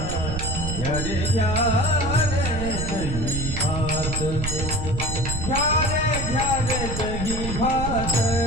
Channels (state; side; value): noise; right; rumble, 4 dB below the sound